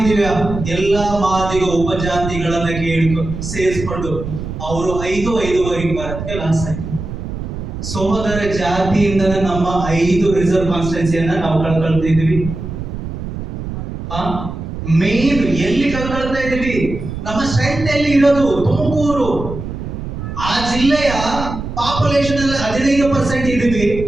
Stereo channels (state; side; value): noise; right; rumble, 7 dB below the sound